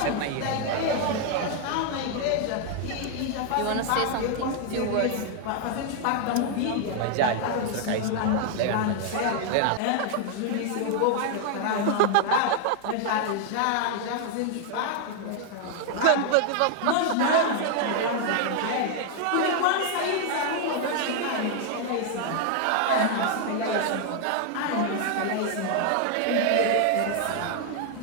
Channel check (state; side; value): different; both; correlation 0.00